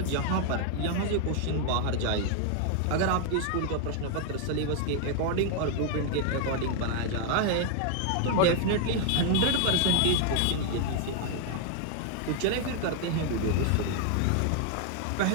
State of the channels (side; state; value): both; different; correlation 0.00